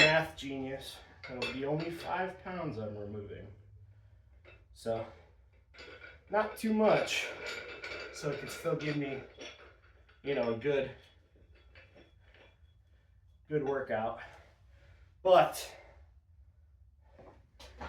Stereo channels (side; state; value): both; identical; correlation 1.00